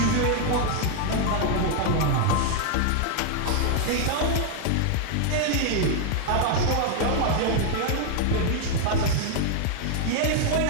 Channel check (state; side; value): different; both; correlation 0.00